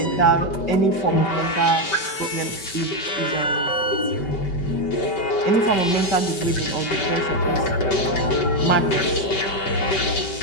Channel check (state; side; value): late; right; 5.2 ms